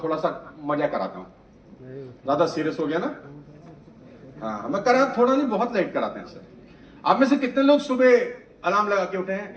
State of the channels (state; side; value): identical; both; correlation 1.00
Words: थोड़ा सा मजा कराता हूं, ज्यादा सीरियस हो गया ना? हाँ, मैं करा थोड़ा नहीं, बहुत लेट कराते हैं सर। आप में से कितने लोग सुबह अलार्म लगा के उठे हैं?